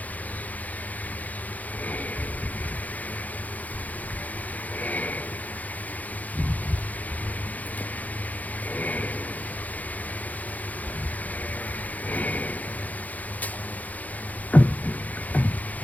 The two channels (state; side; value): late; right; 0.078 ms